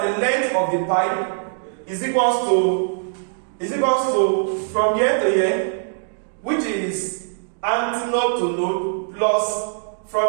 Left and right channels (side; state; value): left; silent; digital silence